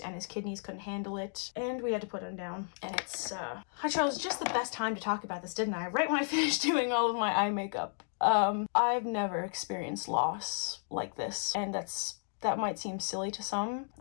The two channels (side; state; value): right; silent; 55 dB below the other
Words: and his kidneys couldn't handle it. And we had to put him down. And it's, I chose just the best time to talk about this, didn't I? Right when I finished doing all of my eye makeup. I've never experienced loss like this, and that might seem silly to some.